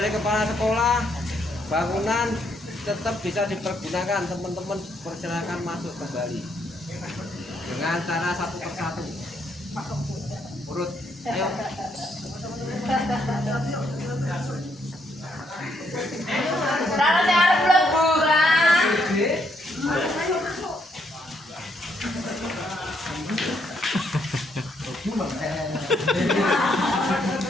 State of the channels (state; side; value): normal; both; correlation 0.74